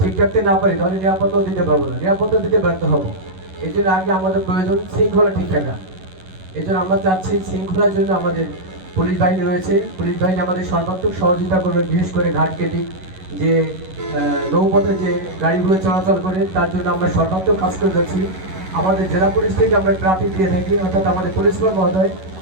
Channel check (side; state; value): left; late; 11 ms